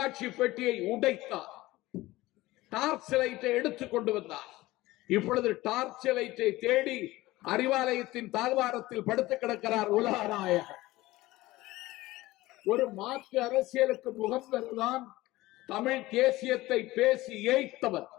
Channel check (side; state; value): right; quieter; 18.3 dB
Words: பெட்டியை உடைத்தார். டார்ச் லைட்டை எடுத்துக் கொண்டு வந்தார். இப்பொழுது டார்ச் லைட்டை தேடி அறிவாலயத்தின் தாழ்வாரத்தில் படுத்து கிடக்கிறார் உலகநாயகன். ஒரு மாற்று அரசியலுக்கு முகம் பெறுதான் தமிழ் தேசியத்தை பேசி ஏய்த்தவர்.